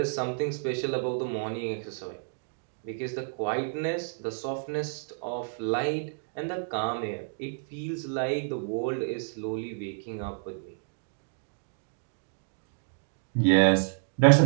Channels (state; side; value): silent; left; digital silence